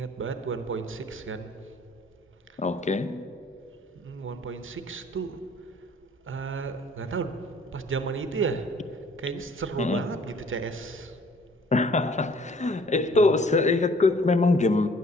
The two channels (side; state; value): both; normal; correlation 0.56